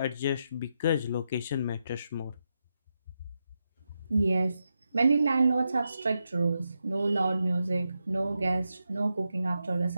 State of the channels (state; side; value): inverted; both; correlation -0.86